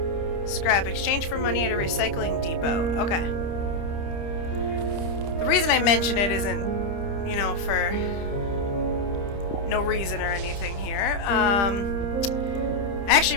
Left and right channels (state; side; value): late; right; 30 ms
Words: Scrap. Exchange for money at a recycling depot. Okay. The reason I mention it isn't, you know, for no reason or anything here. I